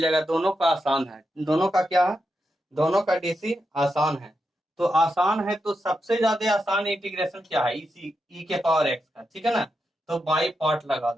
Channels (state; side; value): normal; both; correlation 0.86